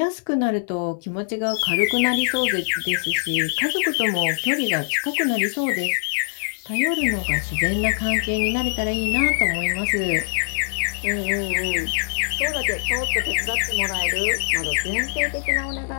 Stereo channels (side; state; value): right; silent; 64 dB below the other